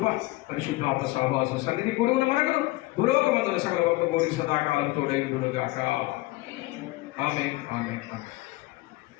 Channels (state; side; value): quieter; right; 20.2 dB